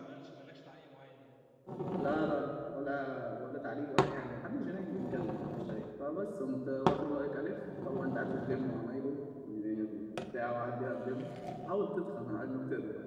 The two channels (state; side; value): identical; both; correlation 1.00